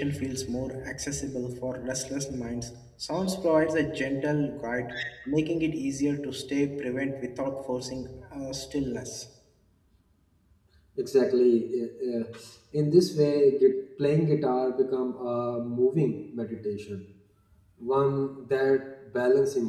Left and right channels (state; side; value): identical; both; correlation 1.00